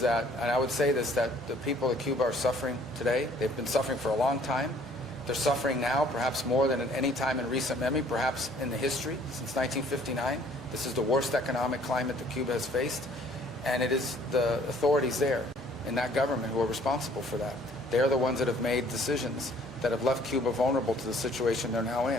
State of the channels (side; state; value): both; normal; correlation 0.58